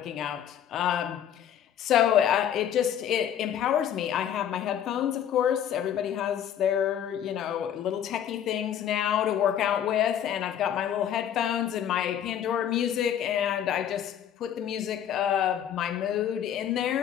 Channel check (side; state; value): right; quieter; 9.7 dB